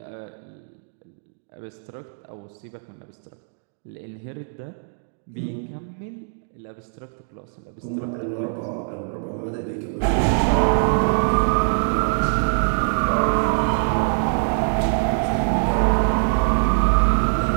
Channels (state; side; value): silent; left; digital silence